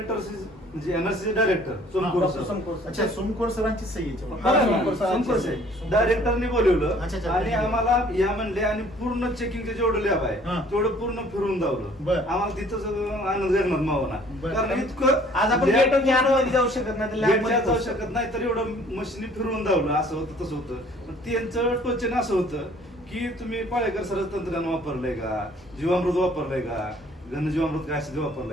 म्हणजे एनआरसी डायरेक्टर सोमकोर सर. अच्छा, सोमकोर सरांची सही आहे हा, याच्यावर. सोमकोर साहेब डायरेक्टरने बोलवलं अच्छा. आणि आम्हाला या म्हणले आणि पूर्ण चेकिंगचे जेवढं लॅब हा. आहे तेवढं पूर्ण फिरून दावलं. बरं. आम्हाला तिथंच आनंद निर्माण बरं. मावना, कारण इतकं आज आपण lab- गेट मध्ये जाऊ शकत नाही, lab मध्ये गेटच्या जाऊ पोहोचू शकत नाही, तर एवढं मशीनी फिरवून दावलं. असं होतं तसं होतं. पण त्यांचं टोचन असं होतं की तुम्ही पाळेकर सर तंत्रज्ञान वापरलंय का, जीवामृत वापरलंय का, घनजीवामृत काय असेल ते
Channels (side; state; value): both; normal; correlation 0.56